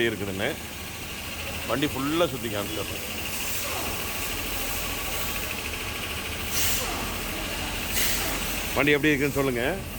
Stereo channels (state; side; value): identical; both; correlation 1.00